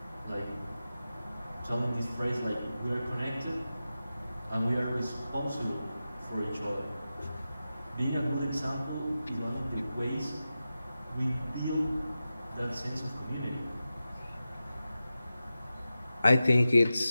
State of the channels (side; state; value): both; inverted; correlation -0.93